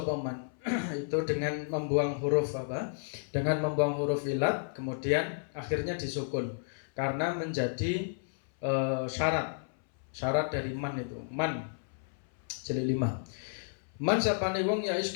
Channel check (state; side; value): silent; right; 56 dB below the other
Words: man. Itu dengan membuang huruf apa? Dengan membuang huruf ilat kemudian akhirnya disukun karena menjadi syarat dari man itu. Man jilid 5. Man sapane wong ya